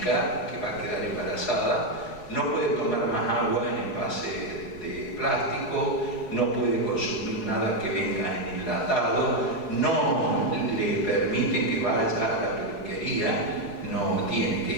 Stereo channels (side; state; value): right; late; 4.7 ms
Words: que va a quedar embarazada, no puede tomar más agua en envase de plástico, no puede consumir nada que venga en enlatado, no le permiten que vaya a la peluquería, no tiene que